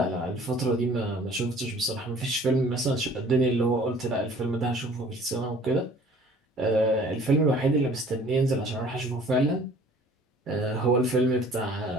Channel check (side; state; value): both; normal; correlation 0.51